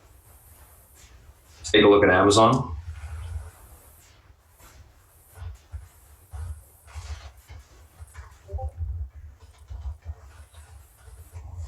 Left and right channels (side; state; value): both; identical; correlation 1.00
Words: Let's take a look at Amazon.